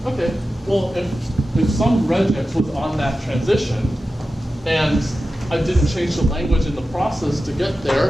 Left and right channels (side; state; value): both; normal; correlation 0.93